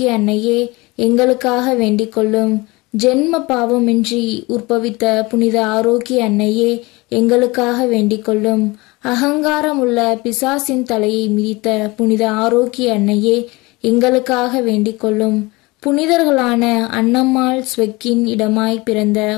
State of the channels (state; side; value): quieter; right; 23.5 dB